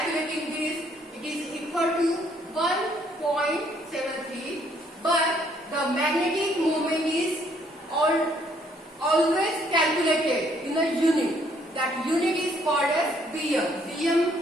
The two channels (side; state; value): both; normal; correlation 0.66